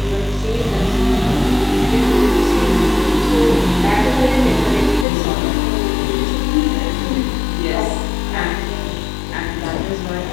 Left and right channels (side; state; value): right; drops out; at 5.1 s